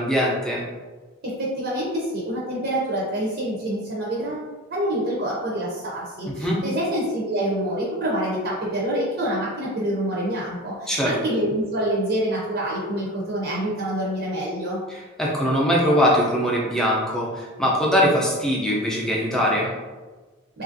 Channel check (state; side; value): normal; both; correlation 0.34